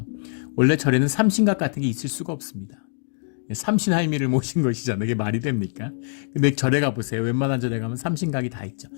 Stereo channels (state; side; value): silent; right; 63 dB below the other